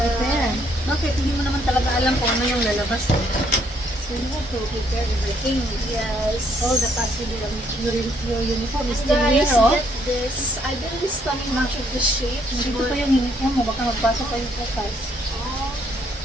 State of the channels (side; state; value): both; normal; correlation 0.68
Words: Bakit? Hindi mo naman talaga alam kung ano yung lalabas. So you have to prepare everything. yes. All the possible, your uniform is And still guys, here, oh. get this. I didn't study much of the shapes, Dito but pa yung uniform mo, baka magpasok pa yung focus.